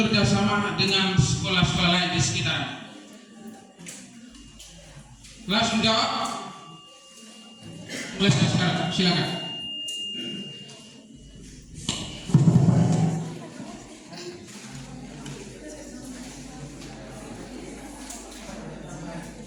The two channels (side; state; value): both; identical; correlation 1.00